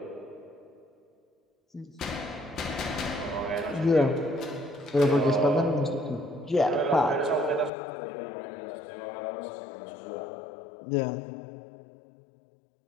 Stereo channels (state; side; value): drops out; right; at 7.7 s